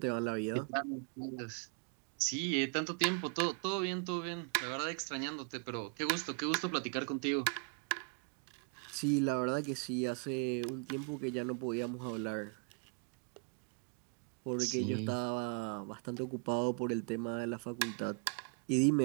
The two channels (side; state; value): left; quieter; 37.6 dB